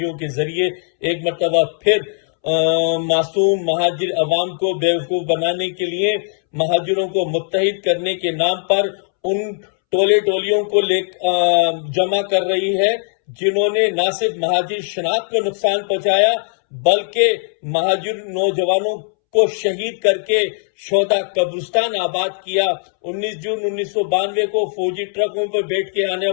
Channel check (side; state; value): right; silent; 67 dB below the other